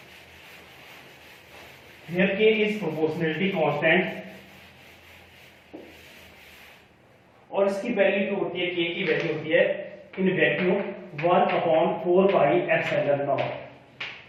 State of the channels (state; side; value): identical; both; correlation 1.00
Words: Here K is proportionality constant और इसकी वैल्यू जो होती है K की वैल्यू होती है in vacuum 1/4 pi epsilon not.